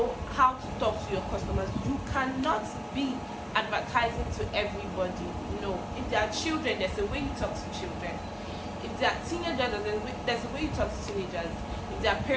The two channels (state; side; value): identical; both; correlation 1.00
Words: how to talk to your customers. You cannot be advertising to everybody. No. If they are children, there's a way you talk to children. If they are teenagers, there's a way you talk to teenagers. If they are